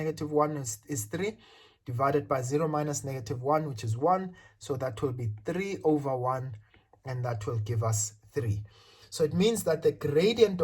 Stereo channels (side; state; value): both; identical; correlation 1.00